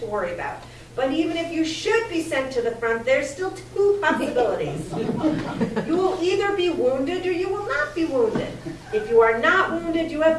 worry about. But even if you should be sent to the front, there's still two possibilities. You will either be wounded or you will not be wounded. If you are not wounded, you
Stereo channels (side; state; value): both; identical; correlation 1.00